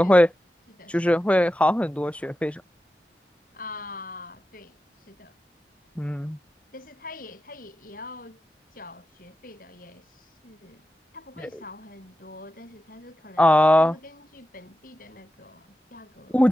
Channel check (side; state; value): both; normal; correlation 0.92